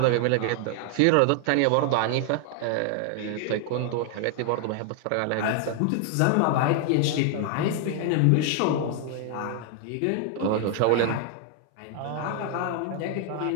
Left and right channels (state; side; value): different; both; correlation 0.00